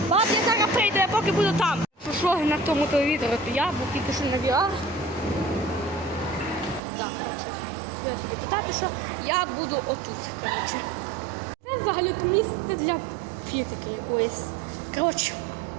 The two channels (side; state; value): left; drops out; at 6.8 s